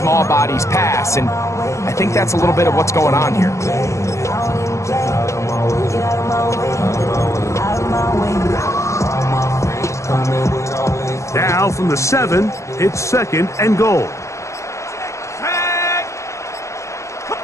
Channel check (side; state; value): right; late; 0.14 ms